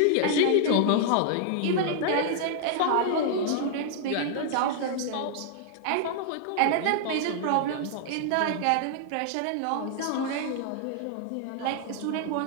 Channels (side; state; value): both; different; correlation -0.01